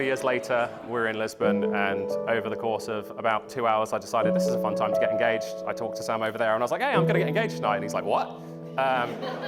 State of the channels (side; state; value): both; identical; correlation 1.00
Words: of years later. We're in Lisbon, and over the course of about 2 hours, I decided this is a fun time to get engaged. I talked to Sam over there, and I was like, hey, I'm going to get engaged tonight. And he's like, what? I